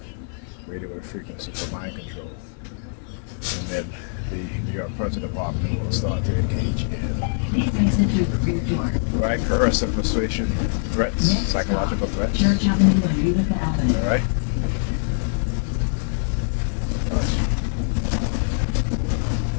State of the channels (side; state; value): right; silent; digital silence